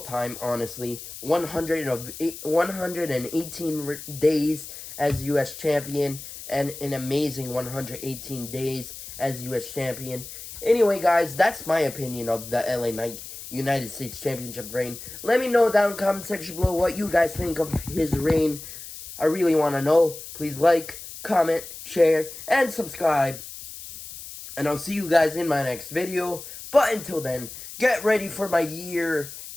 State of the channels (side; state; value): left; noise; hiss, 13 dB below the sound